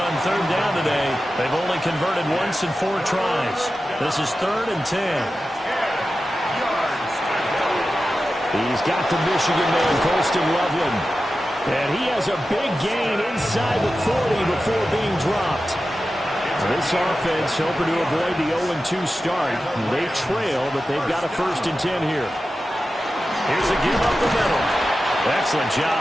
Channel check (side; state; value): both; normal; correlation 0.93